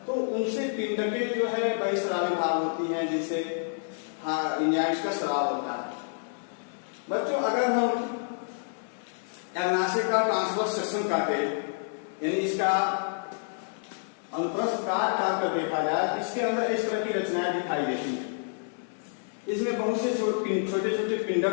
तो उनसे पिंडकें जो है बहिःस्रावी भाग होती हैं, जिससे एंजाइम्स का स्राव होता है। बच्चों, अगर हम अग्नाशय का ट्रांसवर्स सेक्शन काटे, यानी इसका अनुप्रस्थ काट कर देखा जाए तो इसके अंदर इस तरह की रचनाएं दिखाई देती हैं। इसमें बहुत से छोटे छोटे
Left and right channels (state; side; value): silent; right; 59 dB below the other